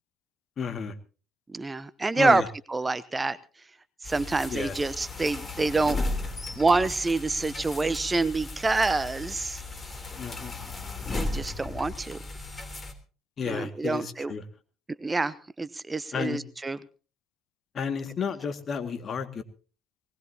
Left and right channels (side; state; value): both; normal; correlation 0.90